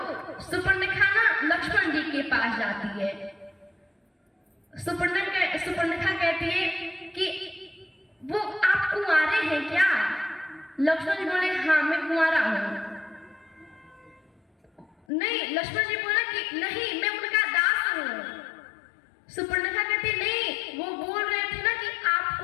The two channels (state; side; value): drops out; right; at 15.0 s